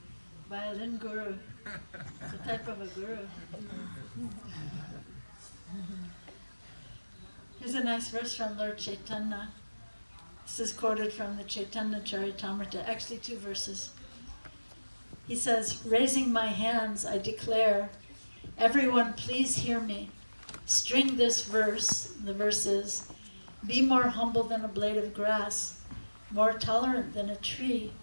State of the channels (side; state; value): both; inverted; correlation -1.00